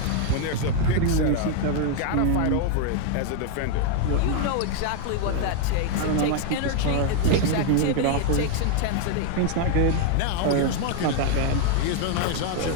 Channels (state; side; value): different; both; correlation 0.00